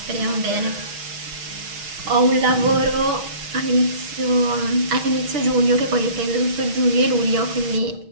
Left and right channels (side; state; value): left; late; 6.2 ms